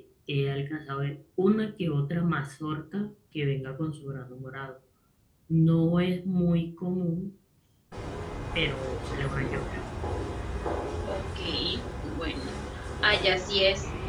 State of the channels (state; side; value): identical; both; correlation 1.00